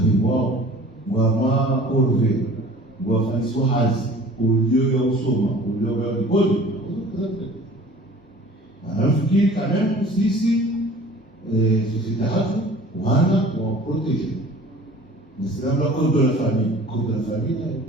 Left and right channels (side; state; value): both; normal; correlation 0.46